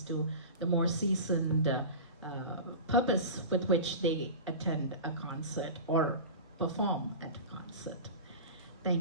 to the more seasoned purpose with which they attend a concert or perform at a concert.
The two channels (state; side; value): inverted; both; correlation -0.31